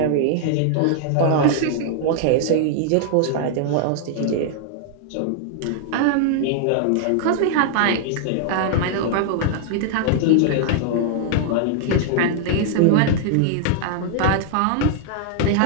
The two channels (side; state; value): both; different; correlation -0.01